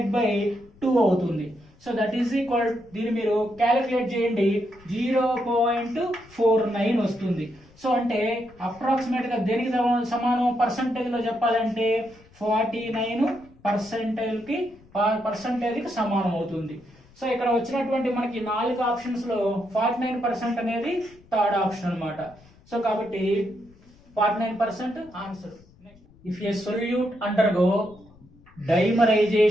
బై 2 అవుతుంది. సో దట్ ఈస్ ఈక్వల్, దీన్ని మీరు క్యాలిక్యులేట్ చేయండి 0.49 వస్తుంది. సో అంటే అప్రాక్సిమేట్ గా దేనికి సమానం పర్సంటేజ్ లో చెప్పాలంటే 49% కి సమానం అవుతుంది. సో ఇక్కడ వచ్చినటువంటి మనకి 4 ఆప్షన్స్ లో 49% అనేది థర్డ్ ఆప్షన్ అన్నమాట. సో కాబట్టి 49% answer. If a solute undergo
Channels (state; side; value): noise; left; rumble, 26 dB below the sound